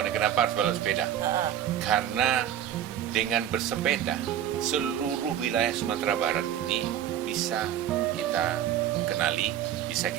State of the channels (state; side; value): quieter; left; 10.6 dB